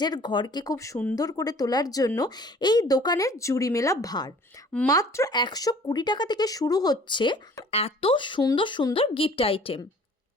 ঘরকে খুব সুন্দর করে তোলার জন্য এই দোকানের জুড়ি মেলা ভার। মাত্র 120 টাকা থেকে শুরু হচ্ছে এত সুন্দর সুন্দর গিফট আইটেম।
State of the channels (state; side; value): normal; both; correlation 0.51